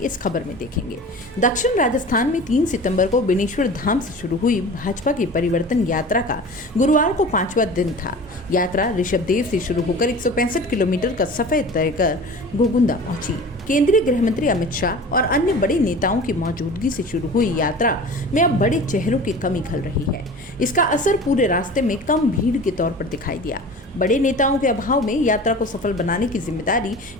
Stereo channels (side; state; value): both; normal; correlation 0.38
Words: खबर में देखेंगे। दक्षिण राजस्थान में 3 सितंबर को बेनेश्वर धाम से शुरू हुई भाजपा की परिवर्तन यात्रा का गुरुवार को 5वां दिन था। यात्रा ऋषभदेव से शुरू होकर 165 किलोमीटर का सफर तय कर घोगुंदा पहुंची। केंद्रीय गृह मंत्री अमित शाह और अन्य बड़े नेताओं की मौजूदगी से शुरू हुई यात्रा में अब बड़े चेहरों की कमी खल रही है। इसका असर पूरे रास्ते में कम भीड़ के तौर पर दिखाई दिया। बड़े नेताओं के अभाव में यात्रा को सफल बनाने की जिम्मेदारी